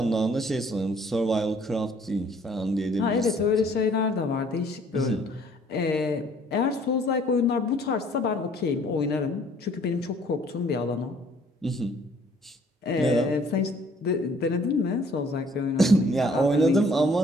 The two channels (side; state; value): both; normal; correlation 0.59